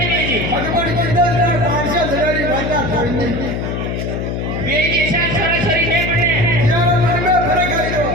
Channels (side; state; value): left; noise; hum, 3 dB below the sound